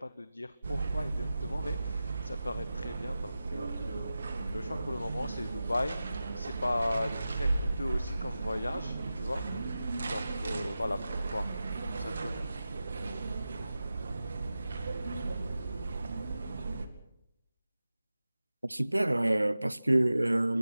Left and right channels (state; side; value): inverted; both; correlation -0.94